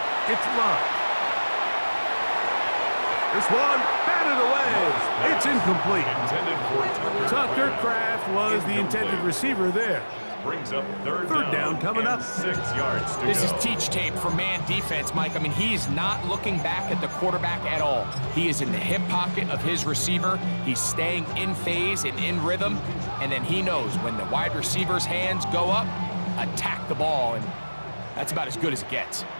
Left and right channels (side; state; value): both; inverted; correlation -1.00